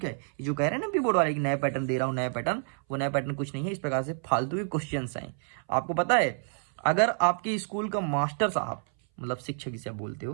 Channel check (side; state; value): left; silent; 59 dB below the other